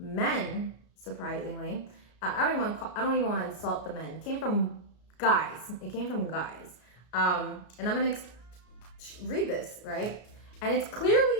surprisingly. I don't even want to insult the men. It came from guys. It came from guys. And I'm gonna read this, right? And it's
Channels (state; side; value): late; right; 33 ms